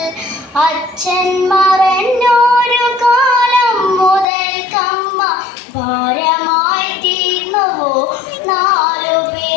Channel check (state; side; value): drops out; right; at 4.2 s